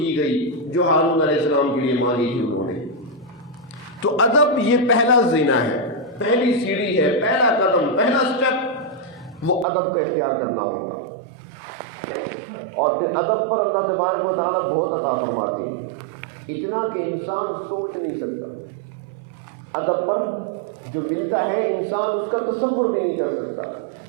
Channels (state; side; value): drops out; left; at 9.7 s